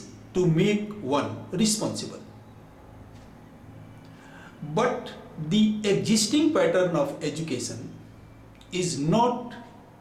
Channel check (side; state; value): both; identical; correlation 1.00